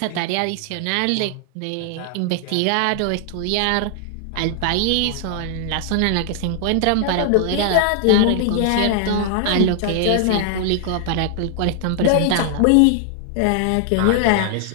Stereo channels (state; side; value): different; both; correlation 0.00